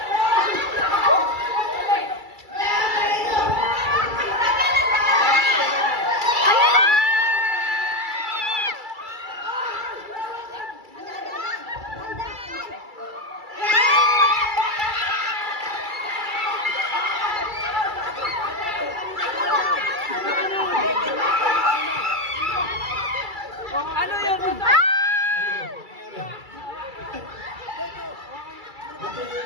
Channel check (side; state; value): left; late; 2.3 ms